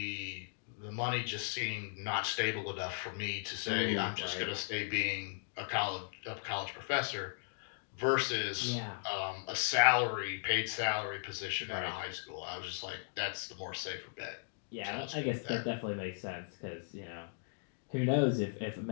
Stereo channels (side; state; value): right; silent; digital silence